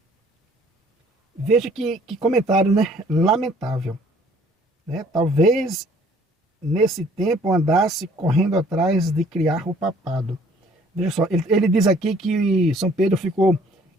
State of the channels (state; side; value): normal; both; correlation 0.58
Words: Veja que comentário, né, lamentável. Né? Talvez nesse tempo andasse correndo atrás de criar o papado. Veja só, ele diz aqui que São Pedro ficou